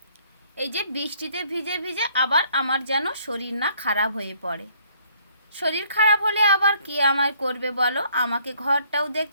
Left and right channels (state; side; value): inverted; both; correlation -0.62